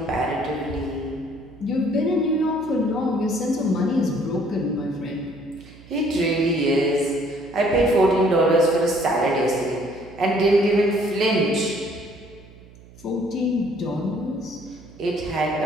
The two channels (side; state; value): right; noise; hum, 22 dB below the sound